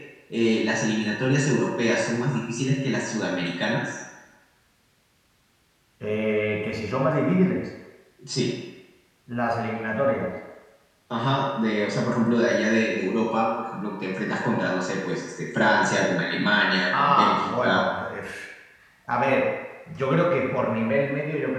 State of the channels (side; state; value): both; identical; correlation 1.00